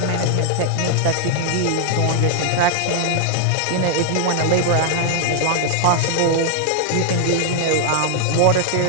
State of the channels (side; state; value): both; different; correlation 0.00